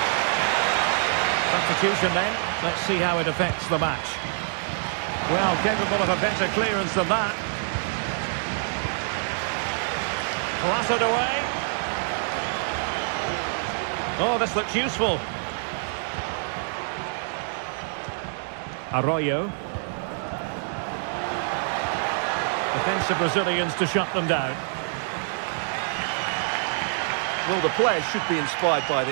Substitution then. Let's see how it affects the match. Well, capable of a better clearance than that. Clattered away. Oh, this looks useful. Arroyo. Defensive Brazilians to shut them down. Well, the players should be inspired by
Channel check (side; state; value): left; silent; 61 dB below the other